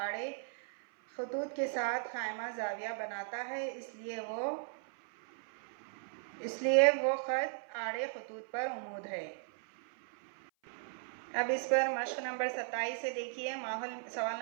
खतूत के साथ ख़ाइमा ज़ाविया बनाता है, इसलिए वो ख़त आड़े खतूत पर उमूद है। अब इस पर मश्क नंबर 27 से देखिए। सवाल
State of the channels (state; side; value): silent; left; 53 dB below the other